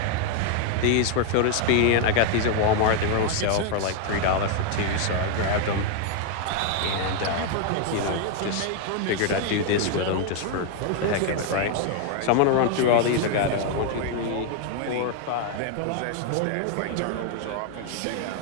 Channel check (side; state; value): both; different; correlation 0.00